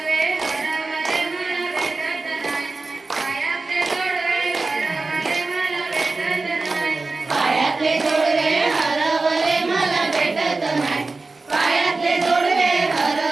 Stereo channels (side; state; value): left; quieter; 3.6 dB